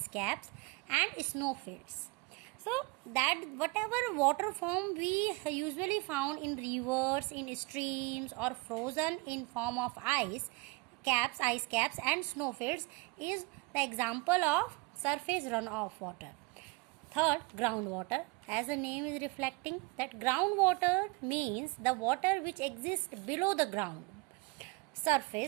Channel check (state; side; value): quieter; left; 25.6 dB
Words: caps and snowfields. So that whatever water form we usually found in rivers, in streams, or frozen in form of ice caps and snowfields is the example of surface runoff water. Third, groundwater. As the name is reflecting, that groundwater means the water which exists below the ground